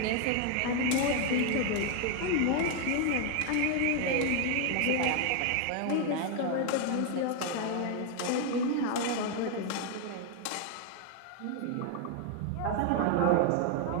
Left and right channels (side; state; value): both; different; correlation 0.01